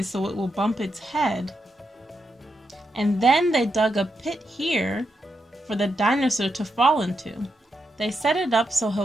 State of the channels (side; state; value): both; normal; correlation 0.84